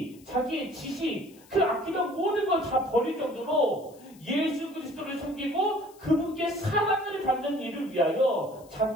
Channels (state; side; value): noise; left; hiss, 26 dB below the sound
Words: 자기의 지식, 그 아끼던 모든 걸 다 버릴 정도로 예수 그리스도를 섬기고 그분께 사랑을 받는 일을 위하여